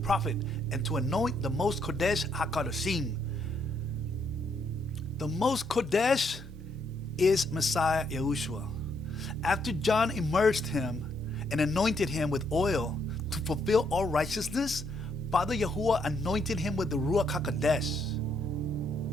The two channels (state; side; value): normal; both; correlation 0.73